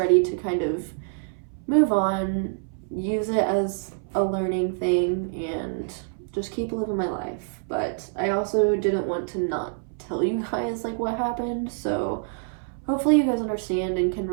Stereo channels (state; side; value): silent; left; 61 dB below the other